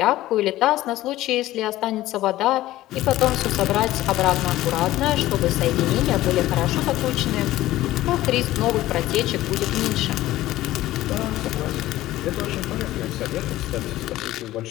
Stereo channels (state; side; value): quieter; right; 15.6 dB